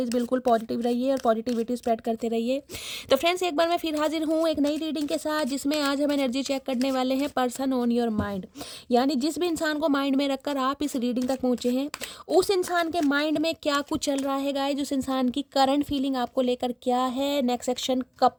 बिल्कुल पॉजिटिव रहिए और पॉजिटिविटी स्प्रेड करते रहिए। तो फ्रेंड्स एक बार मैं फिर हाजिर हूँ एक नई रीडिंग के साथ, जिसमें आज हम एनर्जी चेक करने वाले हैं पर्सन ऑन योर माइंड। यानी जिस भी इंसान को माइंड में रखकर आप इस रीडिंग तक पहुँचे हैं, उस इंसान के माइंड में क्या कुछ चल रहा है गाइस, उस इंसान की करंट फीलिंग आपको लेकर क्या है, नेक्स्ट सेक्शन कब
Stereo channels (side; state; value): both; identical; correlation 1.00